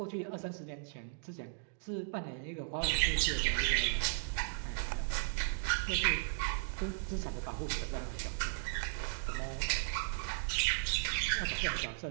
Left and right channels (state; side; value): silent; left; digital silence